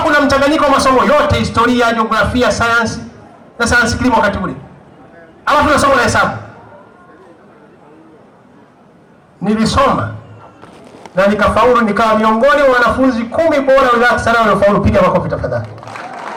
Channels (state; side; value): identical; both; correlation 1.00